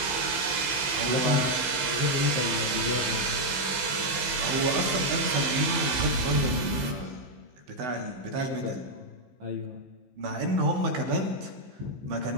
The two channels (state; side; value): late; left; 15 ms